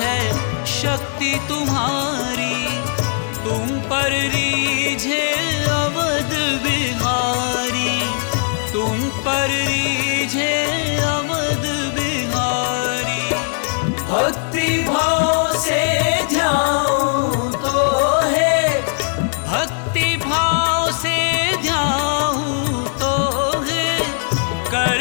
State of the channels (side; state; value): right; silent; 59 dB below the other